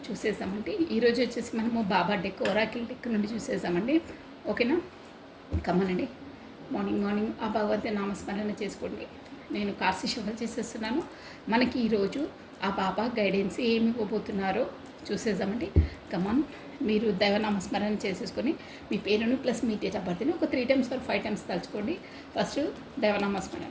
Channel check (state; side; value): identical; both; correlation 1.00